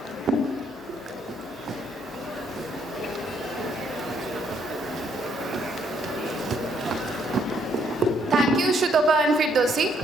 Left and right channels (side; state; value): left; noise; hum, 27 dB below the sound